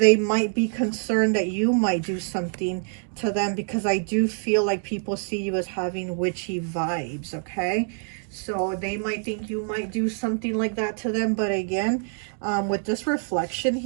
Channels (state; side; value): silent; left; 56 dB below the other